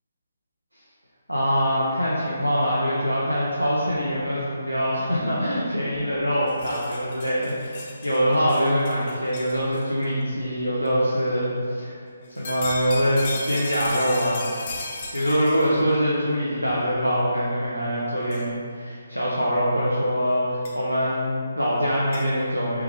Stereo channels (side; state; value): both; inverted; correlation -0.84